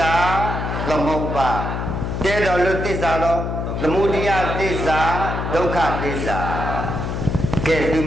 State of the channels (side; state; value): left; noise; hum, 3 dB below the sound